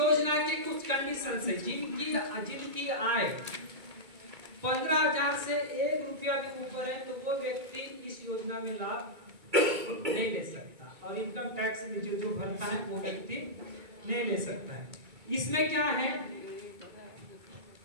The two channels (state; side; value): late; left; 2.2 ms